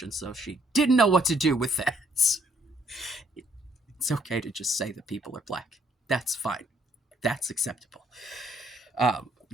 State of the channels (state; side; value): normal; both; correlation 0.67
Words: and so she didn't know what to do with that. It's okay to just say that people are black. That's fine. That's acceptable.